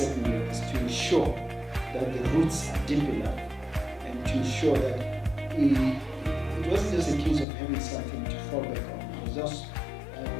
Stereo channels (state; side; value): drops out; right; at 7.5 s